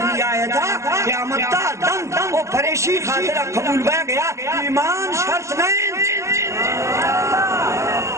تھا قیامتہ دن وہ پریشی خاطرہ قبول بے گیا ایمان شرط نہیں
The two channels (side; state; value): left; late; 0.14 ms